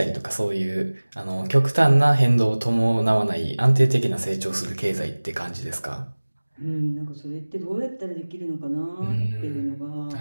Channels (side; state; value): both; inverted; correlation -1.00